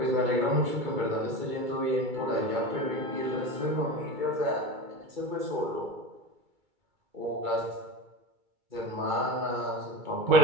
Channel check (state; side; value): late; left; 2.3 ms